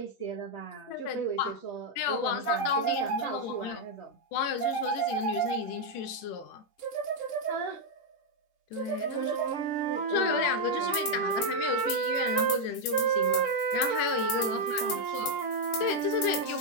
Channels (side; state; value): right; late; 10 ms